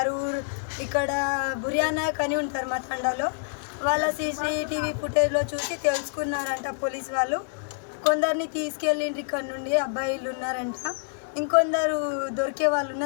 ఇక్కడ బుర్యానాయక్ అని ఉంటారు మా తండాలో, వాళ్ళ సీసీటీవీ ఫుటేజ్లో చూసి తెలుసుకున్నారంట పోలీస్ వాళ్ళు. కొందరిని తీసుకెళ్ళిండ్రు ఇక్కడ నుండి, అబ్బాయిలు ఉన్నారంట. ఇంకొందరు దొరికే వాళ్ళు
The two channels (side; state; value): right; silent; digital silence